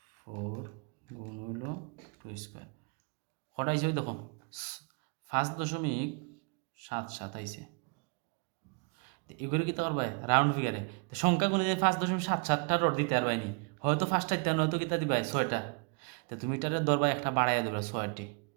গুণ হইল 2 স্কোয়ার কটা আইছে ওই দেখো 5.77 আইছে। এগুলো কি তো পারবাই রাউন্ড ফিগারে সংখ্যা গুণে যে 5.77টা রড দিতে পারবাই নি, হয়তো 5টা দিতে হয়তো কিতা দিবাই 6টা। তো তুমি এটারে ধরবা একটা বাড়াইয়া ধরবা 6টি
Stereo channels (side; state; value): left; quieter; 35.8 dB